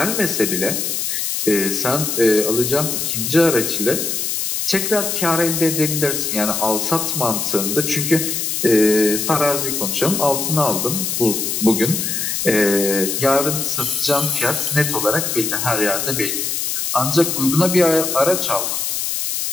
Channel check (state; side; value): noise; left; hiss, 1 dB below the sound